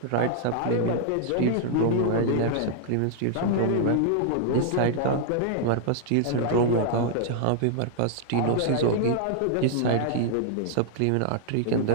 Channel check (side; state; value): both; different; correlation -0.01